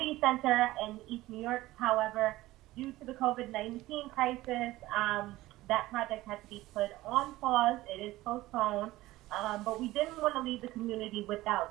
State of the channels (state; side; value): quieter; left; 17.5 dB